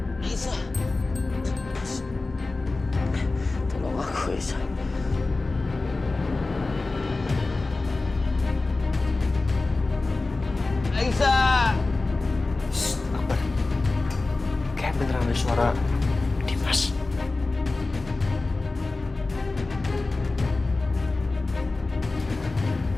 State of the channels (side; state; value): right; quieter; 3.4 dB